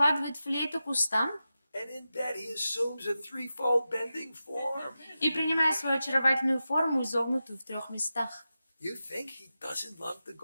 флейту к устам And in bed, he assumes a threefold bending form. и, принимая свою очаровательную форму, изогнутую в 3 местах. You think he doesn't love the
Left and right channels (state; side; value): inverted; both; correlation -0.92